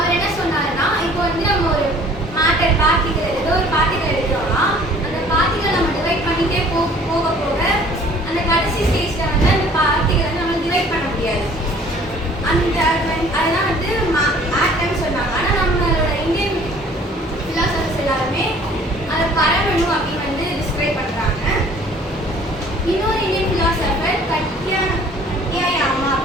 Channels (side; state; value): both; normal; correlation 0.53